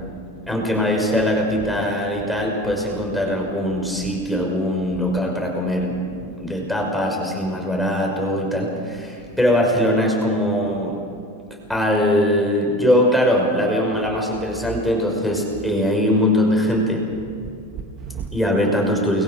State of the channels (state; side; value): normal; both; correlation 0.40